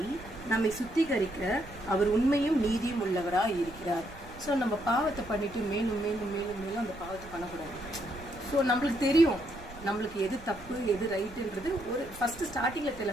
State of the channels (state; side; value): noise; right; rumble, 17 dB below the sound